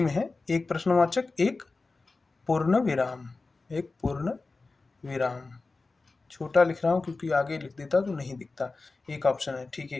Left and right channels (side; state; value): right; quieter; 3.7 dB